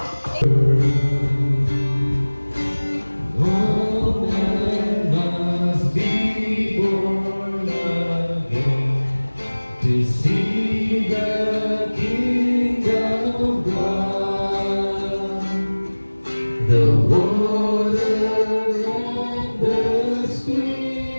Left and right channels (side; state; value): both; inverted; correlation -1.00